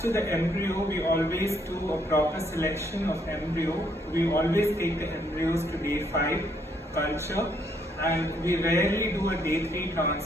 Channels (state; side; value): normal; both; correlation 0.70